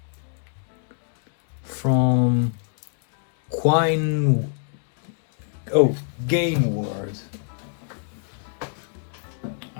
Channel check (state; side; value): silent; right; 61 dB below the other